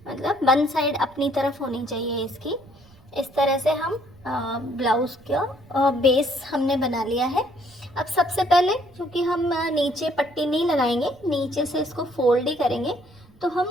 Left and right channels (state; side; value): noise; right; rumble, 27 dB below the sound